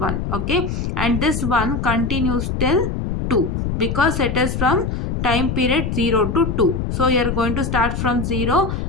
Okay, and this 1 continues till 2, because it is from time period 0 to 2. So you are going to start from 0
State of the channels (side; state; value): left; noise; rumble, 2 dB below the sound